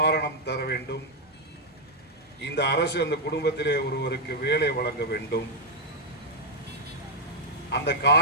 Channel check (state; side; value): normal; both; correlation -0.02